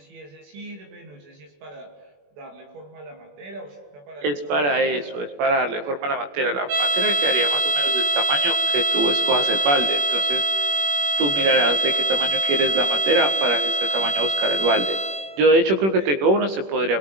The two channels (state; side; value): late; left; 21 ms